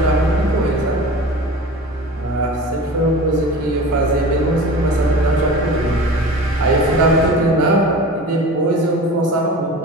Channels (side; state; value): both; normal; correlation 0.36